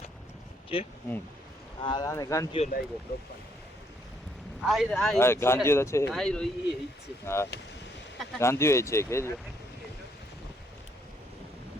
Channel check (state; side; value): normal; both; correlation 0.70